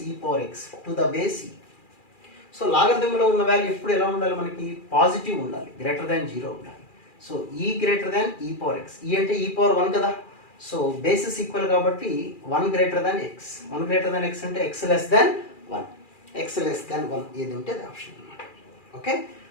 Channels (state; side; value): late; right; 2.4 ms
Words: e power x to the base e. సో లాగరిథంలో ఉన్న value ఎప్పుడు ఎలా ఉండాలి? మనకి positive ఉండాలి, greater than 0 ఉండాలి. So ఈ గ్రేటర్ దాన్ ఈ పవర్ ఎక్స్. ఈ అంటే ఈ పవర్ 1 కదా. సో బేసిస్ ఈక్వల్ కాబట్టి 1 greater than x. 1 greater than x అంటే x less than 1. X less than 1 ఏది ఉంటే అది ఆప్షన్ అనమాట. ఓకే,